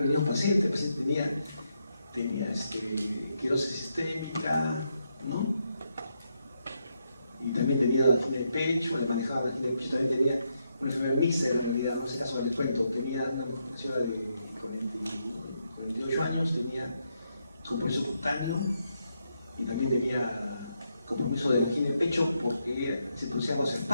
venido un paciente. El paciente tenía esclerosis sistémica, ¿no? Y también tenía angina de pecho, le manejaba la angina de pecho, también tenía una enfermedad mixta en realidad, en ese caso les cuento, tenía una señora de 48 años, tenía compromiso cutáneo y también tenía compromiso de angina de pecho porque se producía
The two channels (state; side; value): inverted; both; correlation -0.81